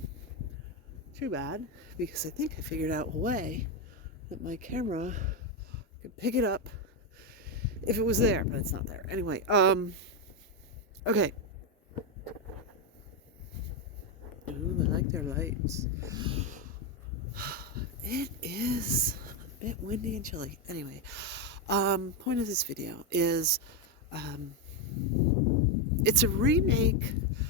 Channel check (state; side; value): normal; both; correlation 0.07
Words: Too bad, because I think I figured out a way that my camera could pick it up if it was there, but it's not there. Anyway, okay. Ooh, I like their lights. It is a bit windy and chilly. Anyway, point of this video is, it's a remake